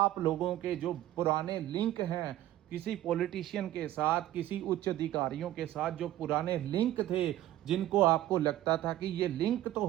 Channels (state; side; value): quieter; left; 14.1 dB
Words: लोगों के जो पुराने लिंक हैं किसी पॉलिटिशियन के साथ, किसी उच्च अधिकारियों के साथ, जो पुराने लिंक थे, जिनको आपको लगता था कि ये लिंक तो